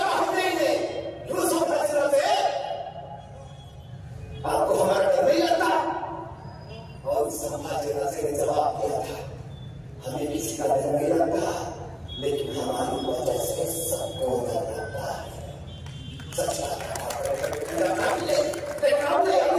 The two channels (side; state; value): both; identical; correlation 1.00